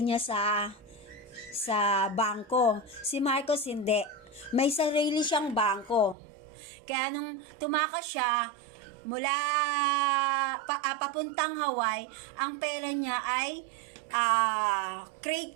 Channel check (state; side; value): drops out; left; at 6.2 s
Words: sa bangko. Si Marcos hindi. May sarili siyang bangko. Kaya nung tumakas siya mula papuntang Hawaii, ang pera niya ay